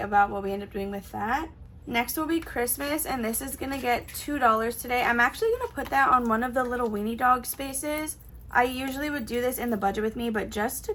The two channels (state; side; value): identical; both; correlation 1.00